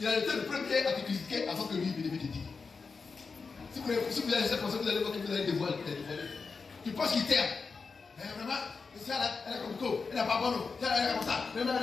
il a été le premier à te critiquer avant que lui il te dise. Si vous allez laisser penser, vous allez voir que vous allez dévoiler. Tu penses qu'il t'aime. Mais vraiment, elle est comme toi, elle n'est pas bonne, elle est comme ça.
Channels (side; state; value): right; quieter; 4.8 dB